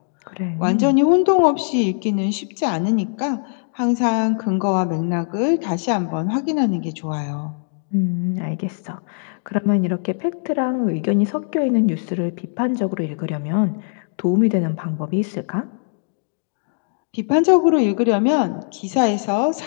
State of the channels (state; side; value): silent; right; digital silence